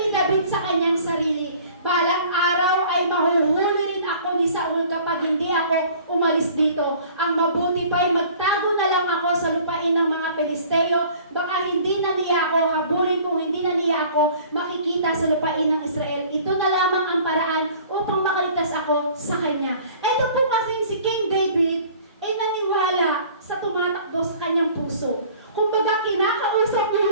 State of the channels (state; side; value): inverted; both; correlation -0.50